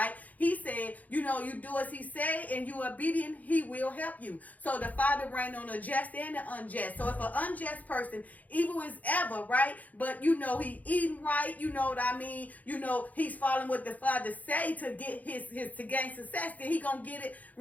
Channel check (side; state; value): right; late; 0.078 ms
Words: He said, you do as he say and you obedient, he will help you. So the Father reigns on the just and the unjust. So if an unjust person, evil is ever, right? But, he eating right, you know what I mean? He's following what the Father say to get his to gain success, then he gonna get it